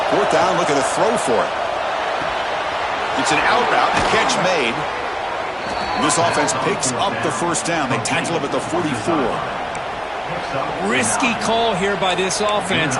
4th down, look at the throw for it. It's an out route, a catch made. This offense picks up the first down. They tackle him at the 44. Risky call here by this offense.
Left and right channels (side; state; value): both; identical; correlation 1.00